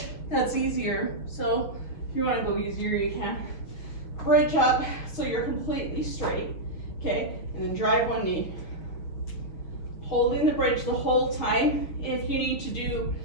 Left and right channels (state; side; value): late; right; 6.4 ms